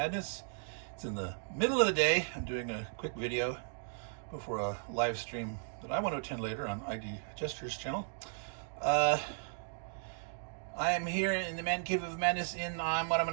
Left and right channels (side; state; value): left; silent; digital silence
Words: It's in the middle of the day. I'm doing a quick video before a live stream that I want to attend later on ID Gestures channel. I am here in the Man Cave of Madness in what I'm